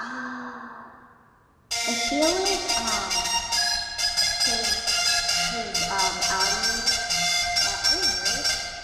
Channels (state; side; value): identical; both; correlation 1.00